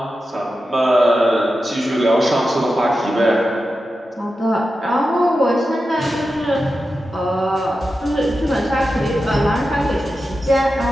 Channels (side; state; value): both; normal; correlation 0.91